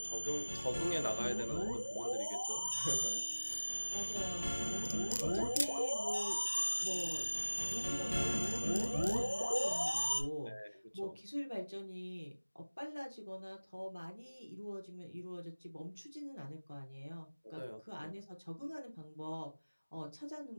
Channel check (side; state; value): both; inverted; correlation -1.00